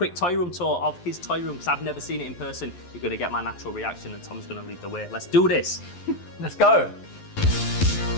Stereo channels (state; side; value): late; right; 11 ms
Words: toy room tour of his toy room because I've never seen it in person. You're gonna get my natural reaction, and Tom's gonna lead the way. Let's do this. Let's go.